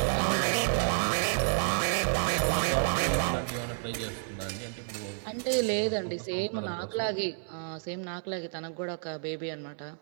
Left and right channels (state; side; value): silent; left; 58 dB below the other